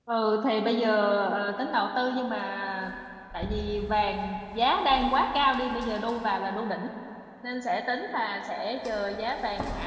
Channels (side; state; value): both; identical; correlation 1.00